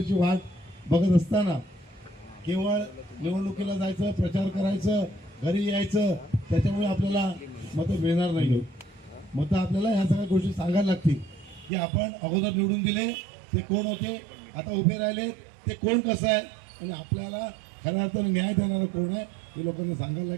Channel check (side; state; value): left; drops out; at 11.7 s